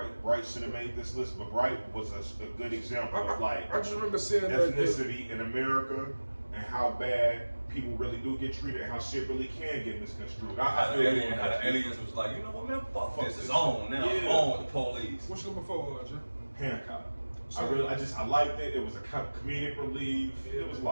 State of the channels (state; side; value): inverted; both; correlation -1.00